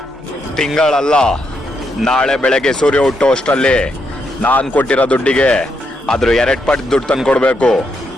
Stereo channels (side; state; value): both; normal; correlation 0.80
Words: ತಿಂಗಳಲ್ಲ, ನಾಳೆ ಬೆಳಗ್ಗೆ ಸೂರ್ಯ ಹುಟ್ಟೋ ಅಷ್ಟರಲ್ಲಿ ನಾನ್ ಕೊಟ್ಟಿರೋ ದುಡ್ಡಿಗೆ ಅದ್ರ 2 ಪಟ್ಟು ದುಡ್ಡು ತಂದು ಕೊಡ್ಬೇಕು.